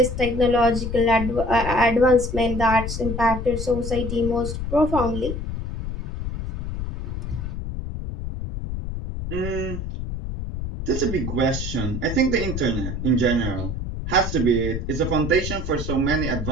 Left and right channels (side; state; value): left; noise; rumble, 5 dB below the sound